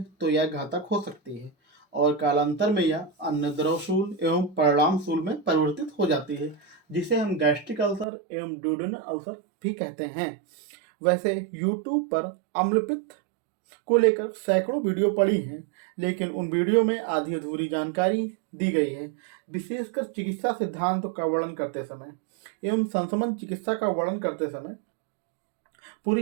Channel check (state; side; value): drops out; left; at 8.1 s